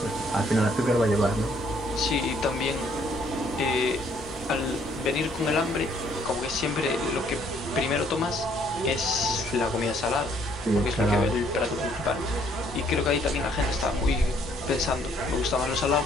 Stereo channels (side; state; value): both; normal; correlation 0.65